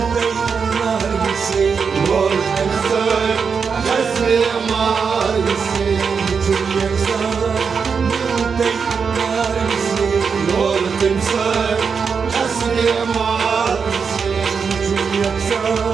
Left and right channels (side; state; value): left; quieter; 5.9 dB